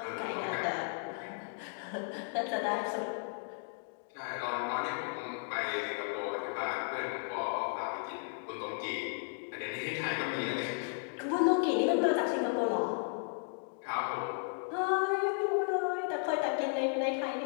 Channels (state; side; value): silent; right; 55 dB below the other